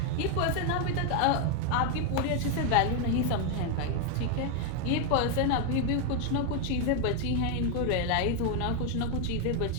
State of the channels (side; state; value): both; different; correlation 0.01